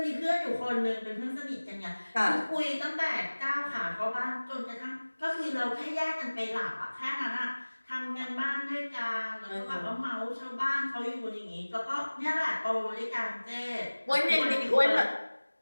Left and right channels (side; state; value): both; inverted; correlation -1.00